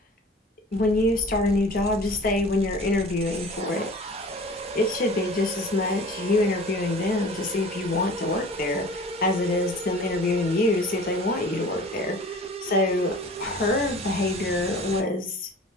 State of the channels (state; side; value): normal; both; correlation 0.43